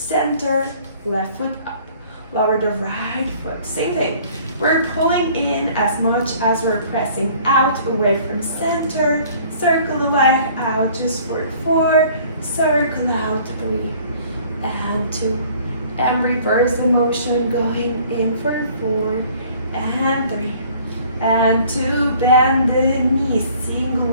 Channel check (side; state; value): both; inverted; correlation -0.54